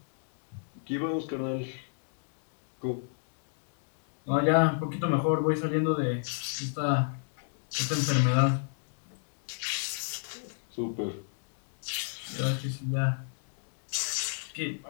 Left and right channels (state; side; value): silent; right; digital silence